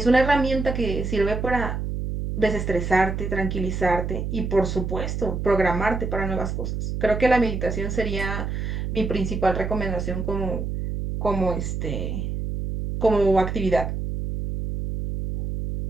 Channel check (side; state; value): right; noise; hum, 3 dB below the sound